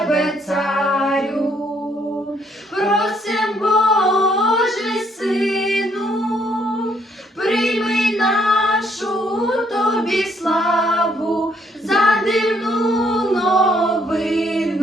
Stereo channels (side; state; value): both; normal; correlation 0.69